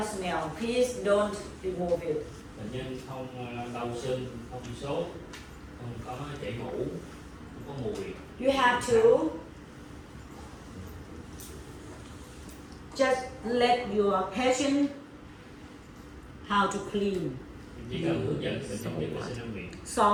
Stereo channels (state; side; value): identical; both; correlation 1.00